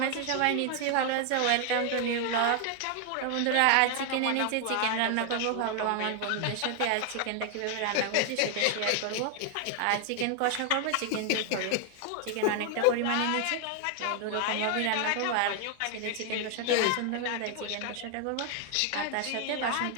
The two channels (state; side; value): different; both; correlation 0.00